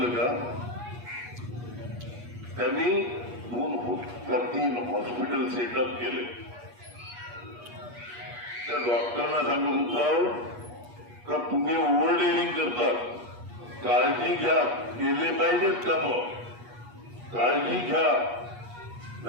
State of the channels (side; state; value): left; late; 8.3 ms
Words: का? त्यांनी 2-3 हॉस्पिटल सेटअप केले. त्या डॉक्टरांना सांगत होतो का तुम्ही ओव्हरडेलिंग करतात, काळजी घ्या, केले पाहिजेत काम, काळजी घ्या.